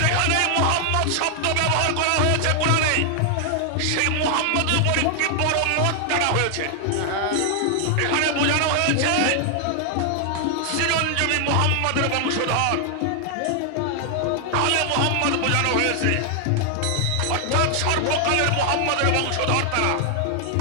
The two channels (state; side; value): different; both; correlation 0.00